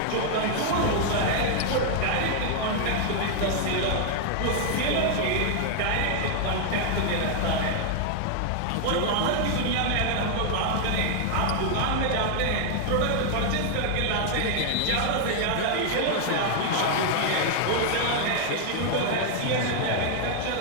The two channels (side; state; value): both; different; correlation 0.00